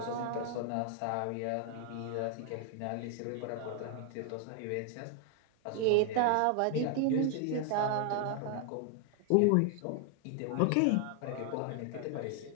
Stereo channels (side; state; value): both; different; correlation 0.00